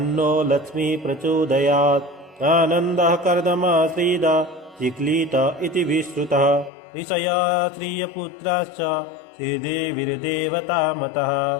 लक्ष्मी प्रचोदयात् आनन्दः कर्दमाश्रीदा चिक्लीत इति विश्रुतः ऋषया श्रियपुत्राश्च श्रीदेवीर्देवतामतः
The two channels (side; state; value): right; drops out; at 6.7 s